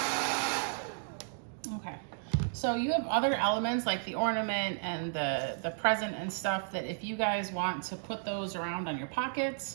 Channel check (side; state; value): left; silent; digital silence